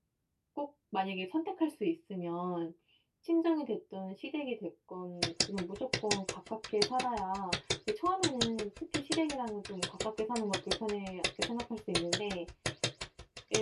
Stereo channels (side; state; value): both; identical; correlation 1.00